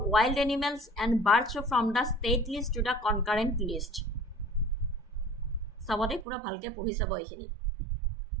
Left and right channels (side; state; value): left; drops out; at 6.2 s